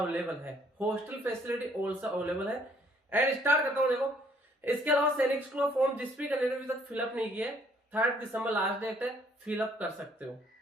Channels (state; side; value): normal; both; correlation 0.63